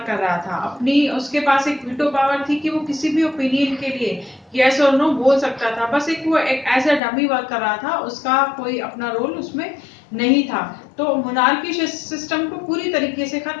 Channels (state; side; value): drops out; right; at 7.0 s